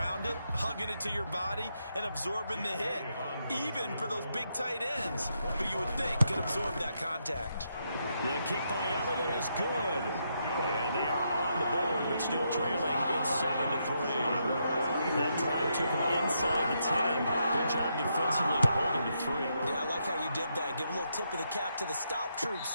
it, hugging it to your body, and absorbing the hit. Even for those big tight ends, who you would think could absorb that contact. The kick by Elliott is good. And they are on the board, but still trailing. It's 7-3. That drive took him inside the 10. Good job defensively to hold him to 3. Yeah, I like how you did that. Give a little tip of the cap to the stop troops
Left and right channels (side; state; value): both; inverted; correlation -0.80